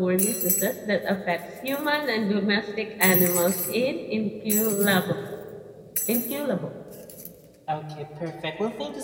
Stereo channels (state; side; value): identical; both; correlation 1.00